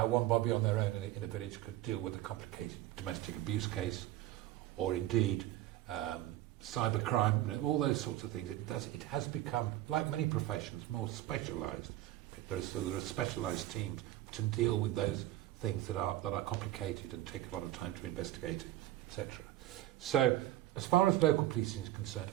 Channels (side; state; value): left; quieter; 14.8 dB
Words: one bobby on their own in a village could deal with a complicated domestic abuse case, or indeed cybercrime, all those sorts of things. It has become, like many professions, more specialised. There are specialised teams to deal with those things that are complicated and take a lot of time to investigate, etc. So, as far as local policing is concerned,